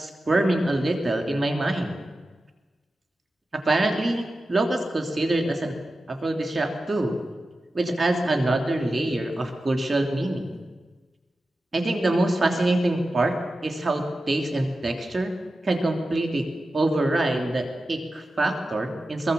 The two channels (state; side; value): normal; both; correlation 0.93